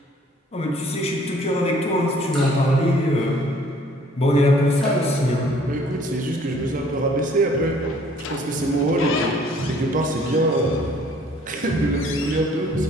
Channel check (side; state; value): both; normal; correlation 0.58